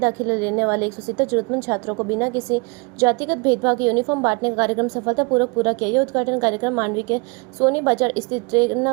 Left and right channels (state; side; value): quieter; left; 30.5 dB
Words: लेने वाले 170 जरूरतमंद छात्रों को बिना किसी जातिगत भेदभाव के यूनिफॉर्म बांटने का कार्यक्रम सफलतापूर्वक पूरा किया। यह उद्घाटन कार्यक्रम मांडवी के सोनी बाजार स्थित